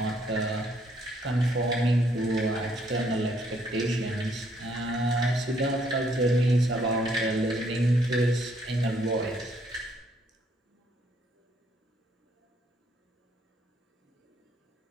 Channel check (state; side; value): normal; both; correlation 0.69